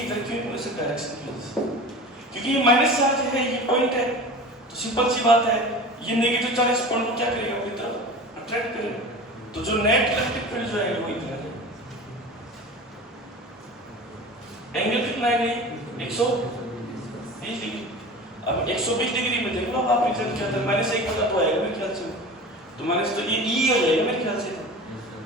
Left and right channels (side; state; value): both; normal; correlation 0.35